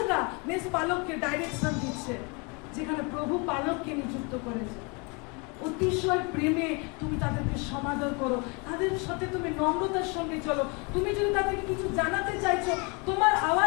মেস পালককে ডাইরেকশন দিচ্ছে, যেখানে প্রভু পালককে নিযুক্ত করেছে। অতিশয় প্রেমে তুমি তাদেরকে সমাদর করো, তাদের সাথে তুমি নম্রতার সঙ্গে চলো। তুমি যদি তাদেরকে কিছু জানাতে চাইছো, তোমার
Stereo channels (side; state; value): right; quieter; 31.4 dB